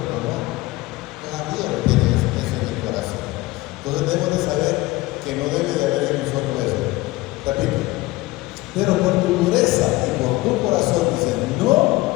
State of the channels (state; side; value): quieter; right; 19.6 dB